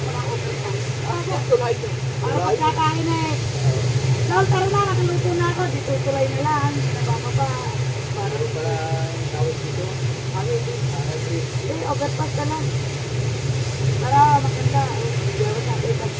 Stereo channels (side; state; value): both; identical; correlation 1.00